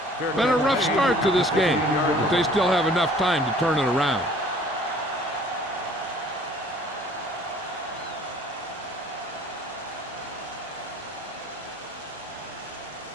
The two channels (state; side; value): normal; both; correlation 0.53